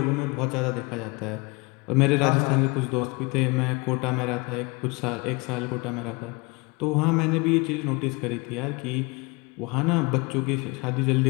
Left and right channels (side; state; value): right; quieter; 27.2 dB